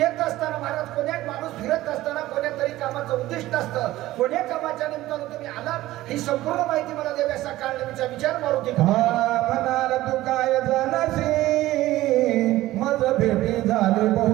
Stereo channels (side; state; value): left; quieter; 16.2 dB